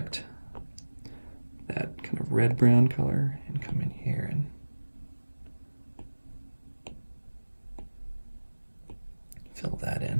that kind of red-brown color and come in here and fill that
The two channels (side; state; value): both; inverted; correlation -1.00